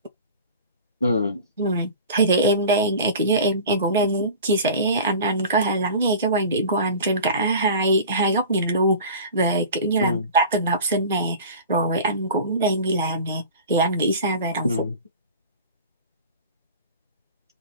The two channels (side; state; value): both; inverted; correlation -0.38